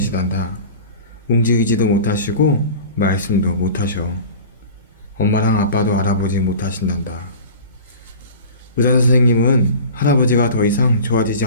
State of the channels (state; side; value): inverted; both; correlation -0.38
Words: 움직이지도 못하시고 말씀도 못하셔. 엄마랑 아빠도 알아보지 못하신단다. 의사 선생님은 할아버지가 더 이상 좋아지지